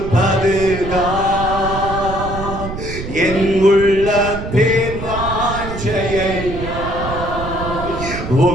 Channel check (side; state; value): right; noise; rumble, 8 dB below the sound